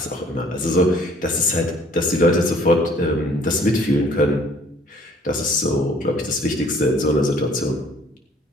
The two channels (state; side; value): normal; both; correlation 0.56